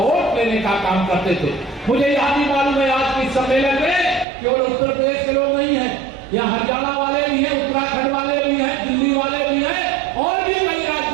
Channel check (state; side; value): drops out; left; at 4.2 s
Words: लेने का काम करते थे। मुझे याद ही मालूम है आज के सम्मेलन में केवल उत्तर प्रदेश के लोग नहीं है, यहाँ हरियाणा वाले भी हैं, उत्तराखंड वाले भी हैं, दिल्ली वाले भी हैं और भी कई